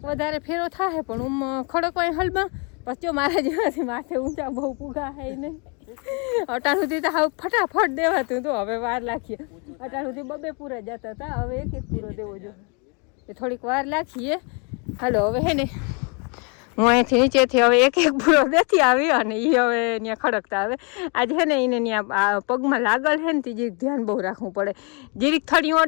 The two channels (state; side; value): quieter; right; 34.7 dB